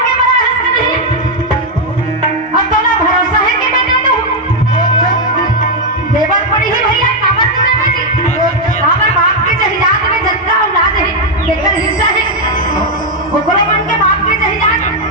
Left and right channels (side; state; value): both; normal; correlation 0.02